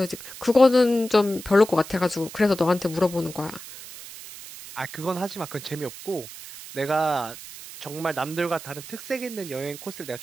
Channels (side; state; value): right; noise; hiss, 14 dB below the sound